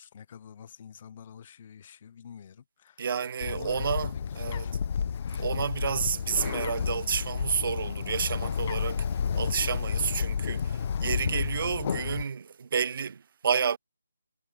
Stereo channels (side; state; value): both; inverted; correlation -0.69